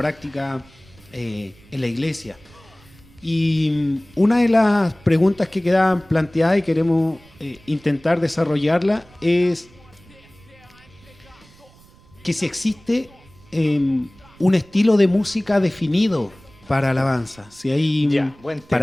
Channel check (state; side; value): noise; right; rumble, 26 dB below the sound